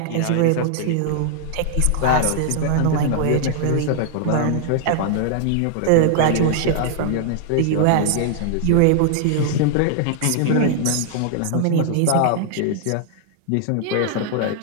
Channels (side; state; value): both; different; correlation 0.00